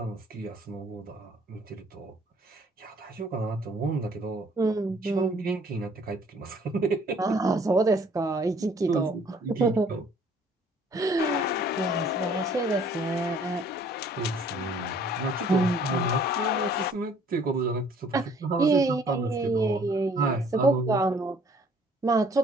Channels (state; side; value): normal; both; correlation 0.58